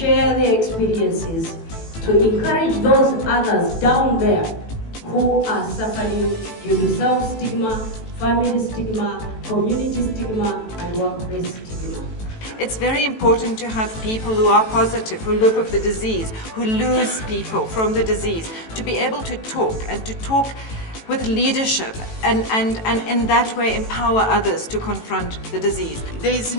their experiences, to encourage those others down there who are suffering due to self-stigma, family stigma, community stigma, and workplace stigma. It's very important to have people who are positive, who live with the disease, who lose people from the disease, to be able to talk and to talk with leadership and in that way empower others to confront the disease. There is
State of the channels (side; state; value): right; late; 18 ms